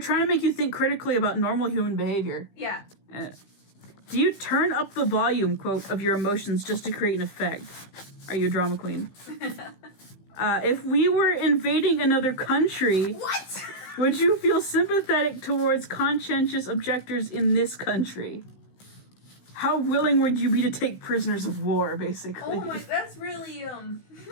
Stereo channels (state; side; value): late; right; 16 ms